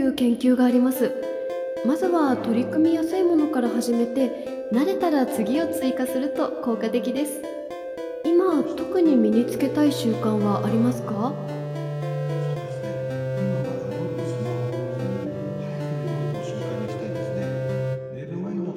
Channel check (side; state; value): both; identical; correlation 1.00